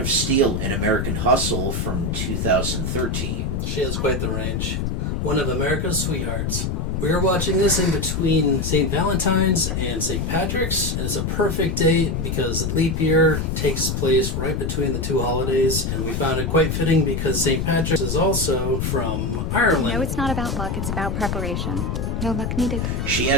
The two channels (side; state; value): left; noise; rumble, 1 dB below the sound